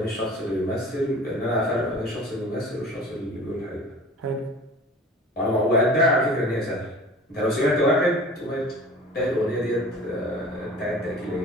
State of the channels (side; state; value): both; normal; correlation 0.42